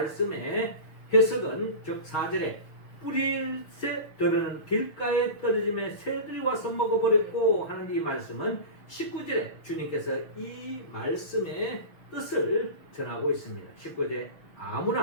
해석은 즉 4절에 뿌릴새 들으는 길가에 떨어짐에 새들이 와서 먹어버렸고 하는 이 말씀은 19절에 주님께서 이 말씀의 뜻을 전하고 있습니다. 19절에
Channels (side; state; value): right; late; 6.4 ms